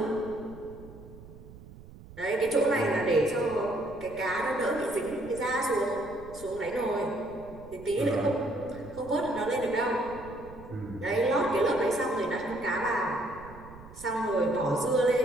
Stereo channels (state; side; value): noise; right; rumble, 18 dB below the sound